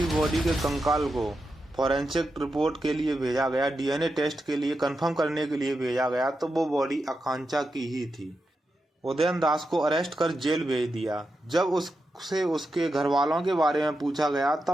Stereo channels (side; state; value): both; normal; correlation 0.87